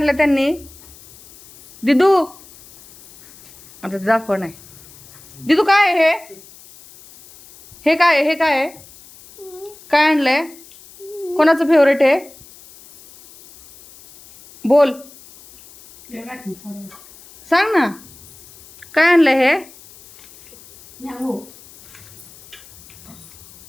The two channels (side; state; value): left; noise; hiss, 23 dB below the sound